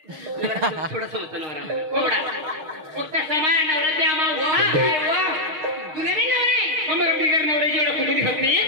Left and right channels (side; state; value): left; late; 6.5 ms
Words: थोडं समजतं नवरा थोडा फक्त समान नवरा त्या तुला बी नवरा मग बिगर नवऱ्याची एवढं कुठे दिसत नाही